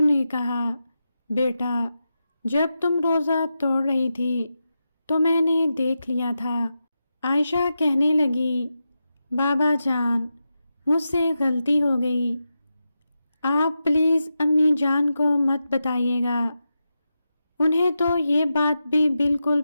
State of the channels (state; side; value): inverted; both; correlation -0.89